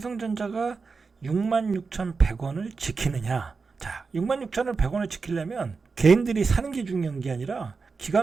66,100원을 지키느냐. 자, 66,100원을 지키려면 개인들이 사는 게 중요한 게 아니라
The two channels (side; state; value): left; quieter; 4.7 dB